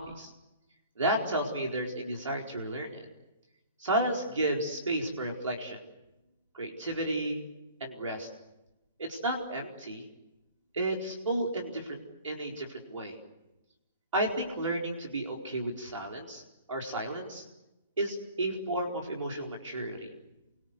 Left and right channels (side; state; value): both; inverted; correlation -0.48